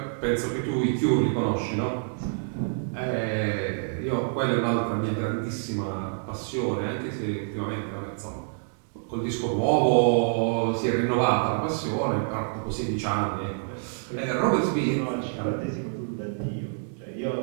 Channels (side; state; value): left; silent; digital silence